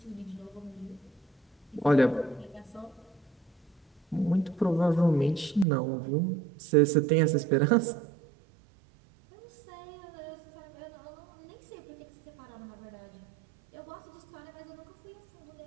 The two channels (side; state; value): left; drops out; at 5.7 s